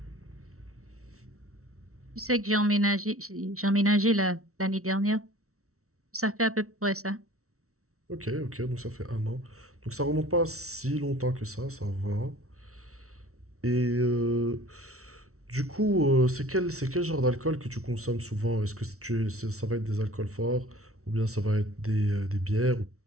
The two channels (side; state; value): left; late; 0.63 ms